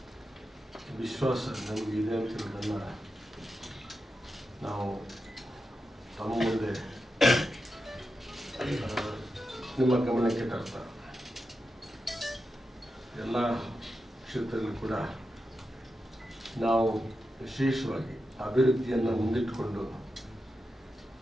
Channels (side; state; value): both; normal; correlation 0.89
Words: ವಿಶ್ವಾಸ ನಮಗಿದೆ ಅಂತ ಹೇಳೋದನ್ನು ನಾವು ತಮ್ಮ ಮುಂದೆ ನಿಮ್ಮ ಗಮನಕ್ಕೆ ತರ್ತಾ ಎಲ್ಲ ಕ್ಷೇತ್ರದಲ್ಲೂ ಕೂಡ ನಾವು ವಿಶೇಷವಾಗಿ ಅಭಿವೃದ್ಧಿಯನ್ನು ಮುಂದಿಟ್ಟುಕೊಂಡು